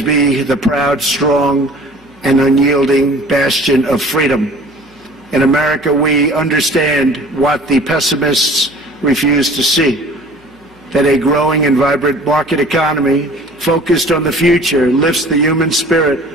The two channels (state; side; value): noise; left; hum, 30 dB below the sound